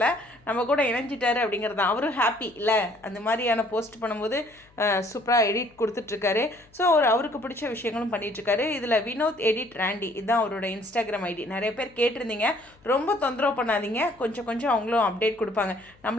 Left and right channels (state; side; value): noise; left; hum, 30 dB below the sound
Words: நம்ம கூட இணைஞ்சிட்டாரு அப்படிங்கிறது தான். அவரும் ஹாப்பி இல்லை, அந்த மாதிரியான போஸ்ட் பண்ணும்போது சூப்பராக எடிட் கொடுத்துட்ருக்காரு. ஸோ அவருக்கு பிடிச்ச விஷயங்களும் பண்ணிகிட்ருக்காரு. இதில் வினோத் எடிட் ராண்டி இதுதான் அவரோட இன்ஸ்டாகிராம் ஐடி. நிறைய பேர் கேட்டிருந்தீங்க, ரொம்ப தொந்தரவு பண்ணாதீங்க, கொஞ்சம் அவங்களும் அப்டேட் கொடுப்பாங்க.